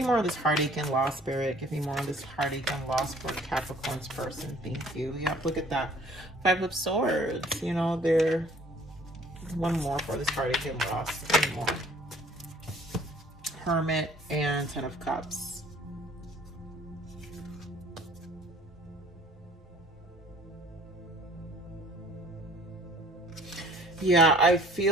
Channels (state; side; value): normal; both; correlation 0.54